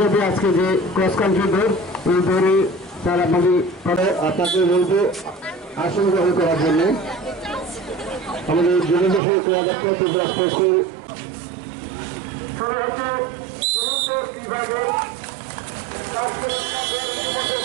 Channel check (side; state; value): left; drops out; at 9.2 s